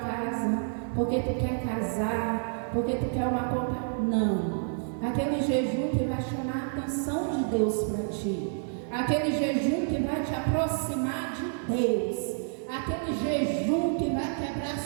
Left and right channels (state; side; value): silent; left; 59 dB below the other